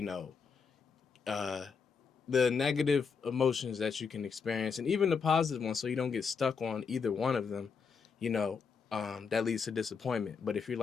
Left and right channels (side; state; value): right; quieter; 5.7 dB